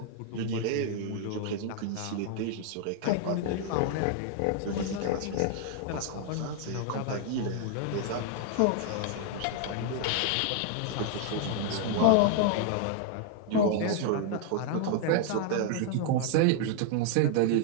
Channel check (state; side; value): different; both; correlation 0.00